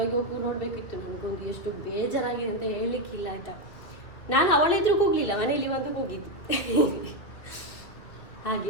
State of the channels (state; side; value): late; right; 2.5 ms